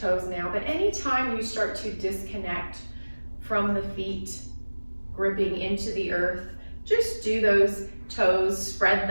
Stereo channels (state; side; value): inverted; both; correlation -1.00